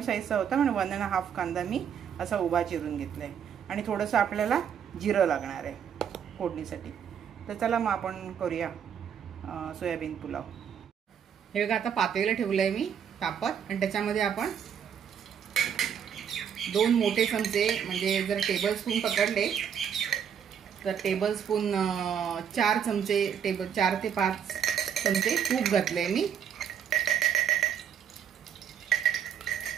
होता म्हणून 1.5 कांदा मी असा उभा चिरून घेतलाय। आणि थोडंसं आपल्याला जिरं लागणार आहे फोडणीसाठी। तर चला मग आपण करूया सोयाबीन पुलाव। हे बघा, आता पातेलं ठेवलंय मी तापत, आणि त्याच्यामध्ये आपण 2 मोठे चमचे, म्हणजे जर टेबलस्पून पकडले तर टेबलस्पून 4 चमचे, 4 ते 5 चमचे तूप घातले मी।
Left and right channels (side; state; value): left; quieter; 8.2 dB